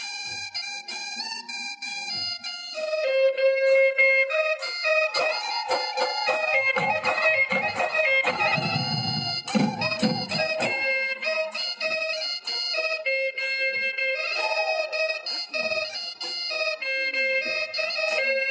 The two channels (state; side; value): identical; both; correlation 1.00